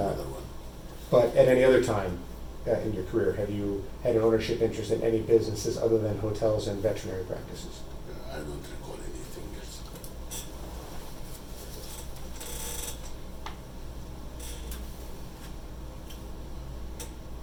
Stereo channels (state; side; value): identical; both; correlation 1.00